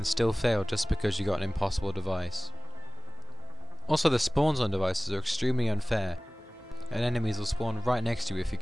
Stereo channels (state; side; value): normal; both; correlation 0.98